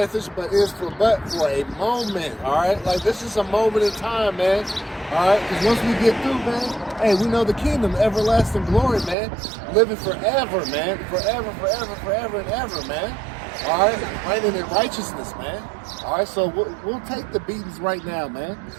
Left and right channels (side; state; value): left; drops out; at 9.2 s